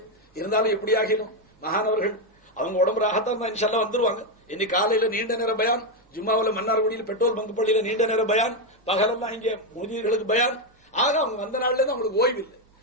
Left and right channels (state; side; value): normal; both; correlation 0.05